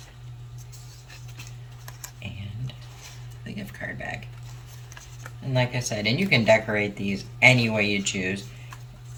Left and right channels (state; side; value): identical; both; correlation 1.00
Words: and the gift card bag. And like I said, and you can decorate these any way you choose